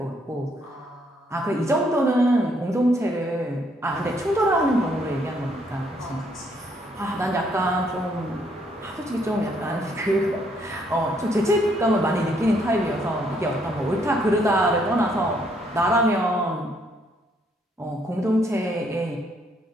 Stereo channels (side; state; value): both; normal; correlation 0.70